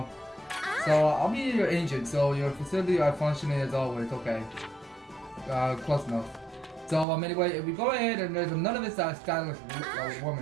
So I'll be your agent, so your facility are functioning as always. Okay. Close enough. So anyway, if we go ahead and there's none of this stylish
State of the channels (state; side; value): drops out; left; at 7.1 s